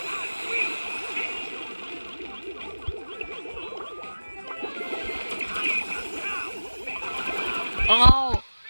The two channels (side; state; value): both; inverted; correlation -1.00